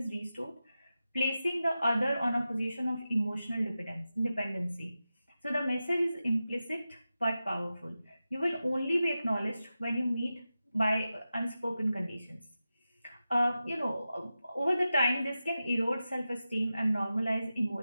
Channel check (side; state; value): both; inverted; correlation -0.92